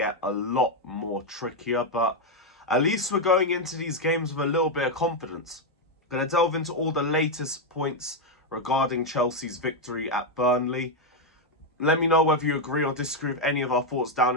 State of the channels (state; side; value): normal; both; correlation 0.03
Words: a lot more trickier, but at least we're going into these games with a little bit of confidence. Going to delve into all the latest points regarding Chelsea's victory at Burnley. Let me know whether you agree or disagree with any of our thoughts down